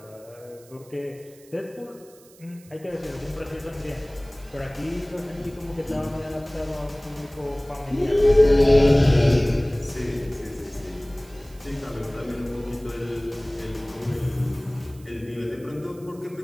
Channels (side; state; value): right; noise; hiss, 26 dB below the sound